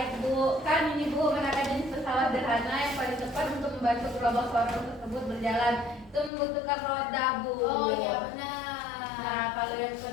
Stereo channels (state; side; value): drops out; right; at 6.3 s